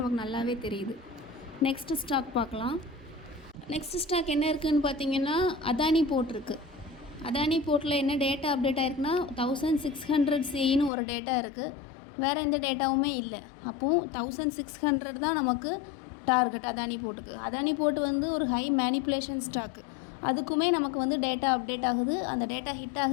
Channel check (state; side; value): drops out; right; at 10.9 s